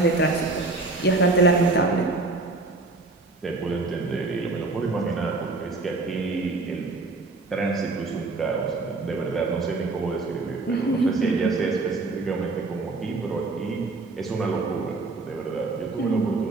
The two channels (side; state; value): left; quieter; 3.4 dB